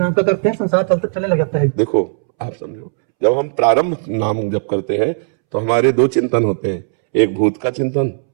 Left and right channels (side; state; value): left; silent; 68 dB below the other